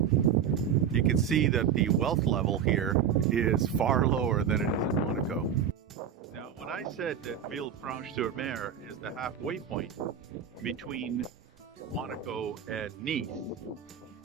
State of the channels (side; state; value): left; quieter; 8.1 dB